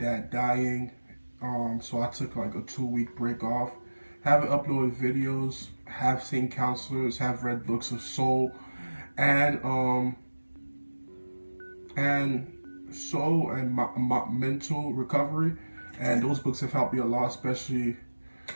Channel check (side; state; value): both; inverted; correlation -1.00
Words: dying. So I took like a 2 week break off. Haven't uploaded videos. Have seen counselors. Have read books of soul, and soul and my mental recovery. And those books have helped me a lot, especially